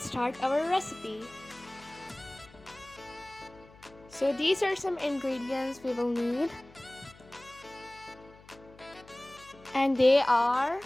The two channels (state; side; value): noise; left; hum, 24 dB below the sound